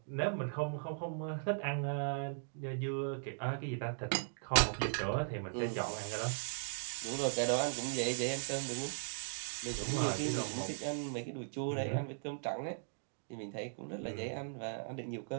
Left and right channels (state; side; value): silent; left; digital silence